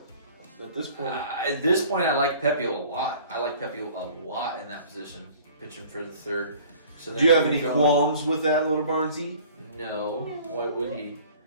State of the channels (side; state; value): both; inverted; correlation -0.50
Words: at this point. At this point, I like Pepio a lot. I like Pepio a lot in that position, pitching for the third. So do you have any qualms with that, Little Barnesy? No. Why would he?